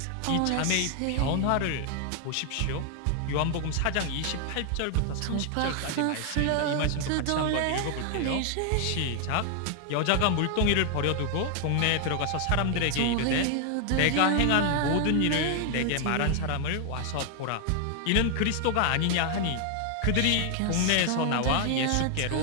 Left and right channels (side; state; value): both; different; correlation 0.00